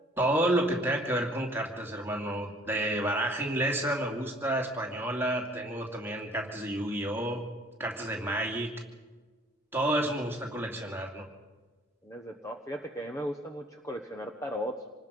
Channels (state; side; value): normal; both; correlation 0.56